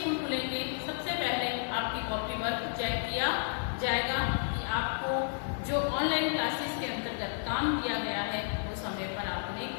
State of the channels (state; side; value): silent; right; digital silence